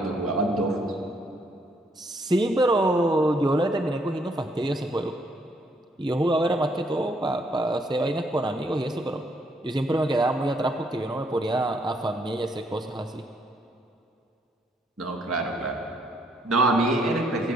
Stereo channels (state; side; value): normal; both; correlation 0.71